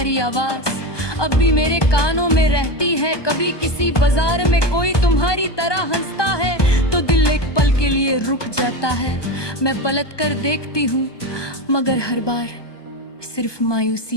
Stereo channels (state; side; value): late; right; 1.2 ms